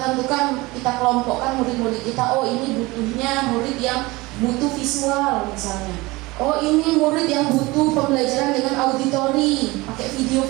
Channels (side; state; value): left; quieter; 22.0 dB